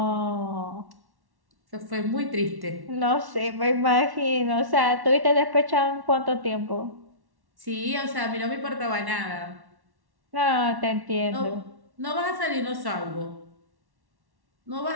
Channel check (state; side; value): late; left; 1.1 ms